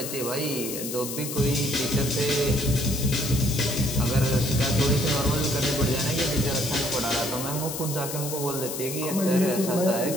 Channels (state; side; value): noise; left; hiss, 6 dB below the sound